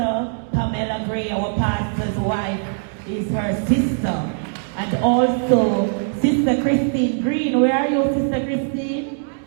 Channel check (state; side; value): silent; left; 65 dB below the other